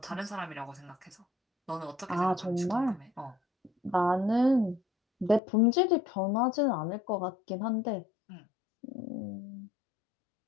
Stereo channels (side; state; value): right; drops out; at 5.4 s